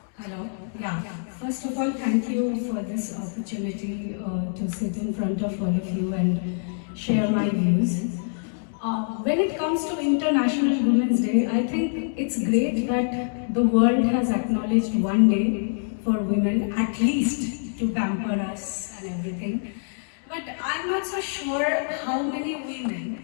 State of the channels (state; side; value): silent; right; digital silence